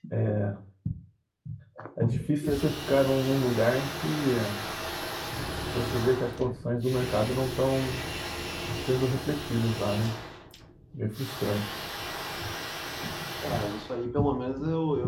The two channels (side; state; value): both; identical; correlation 1.00